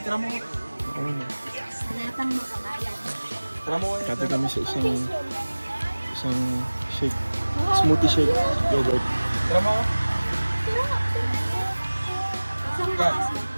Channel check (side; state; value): both; inverted; correlation -1.00